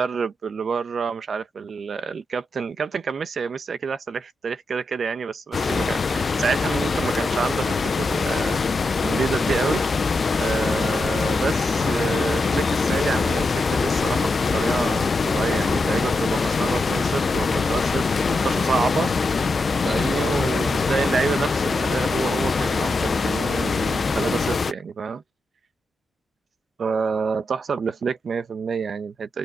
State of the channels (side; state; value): both; normal; correlation 0.86